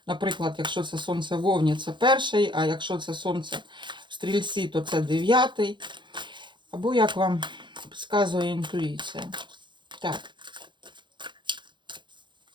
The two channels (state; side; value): late; left; 0.23 ms